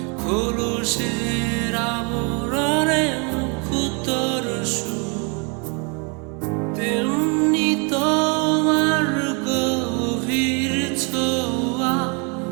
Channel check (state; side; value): quieter; left; 34.1 dB